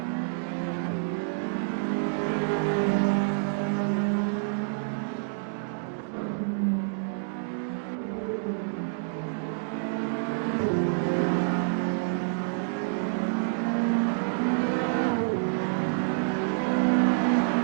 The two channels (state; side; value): silent; left; digital silence